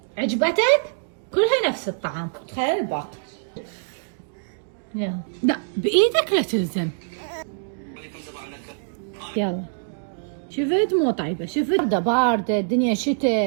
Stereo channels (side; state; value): left; silent; digital silence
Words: عجبتك؟ كلها نفس الطعم. تخيل الباقي. يلا. لا بايدك لا تلزم. يلا. شفت مو طيبة، شفت باردة الدنيا